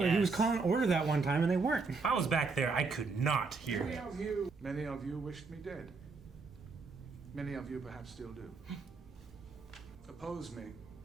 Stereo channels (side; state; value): left; quieter; 4.4 dB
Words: he was calling order that one time and they weren't. If I was back there, I could not hear it. Many of you wished me dead. Many of you perhaps still do. Oppose me,